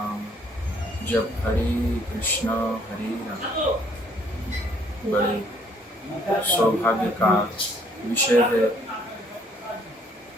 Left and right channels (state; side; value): normal; both; correlation 0.64